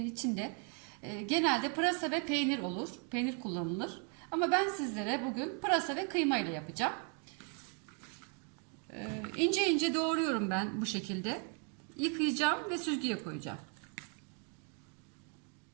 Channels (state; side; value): quieter; left; 39.8 dB